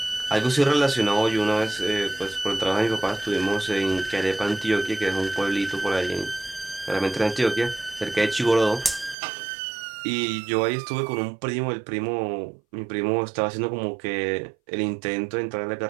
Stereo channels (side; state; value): left; drops out; at 9.2 s